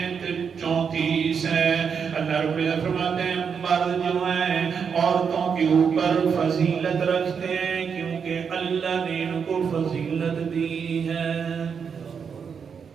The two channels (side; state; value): left; quieter; 6.5 dB